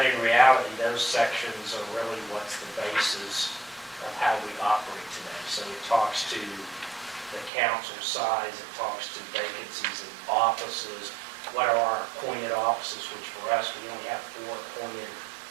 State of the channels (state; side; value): drops out; left; at 7.5 s